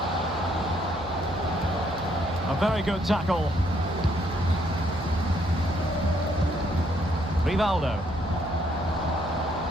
A very good tackle. Rivaldo.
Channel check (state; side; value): noise; right; hum, 14 dB below the sound